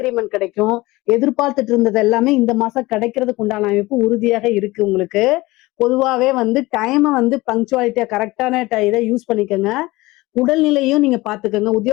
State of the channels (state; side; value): quieter; right; 20.4 dB